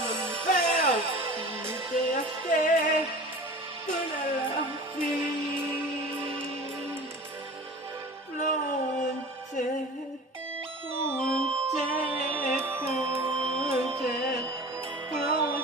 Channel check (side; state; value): both; normal; correlation 0.38